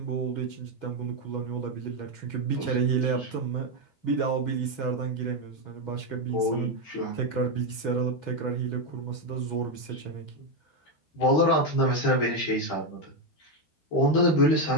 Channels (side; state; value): right; late; 13 ms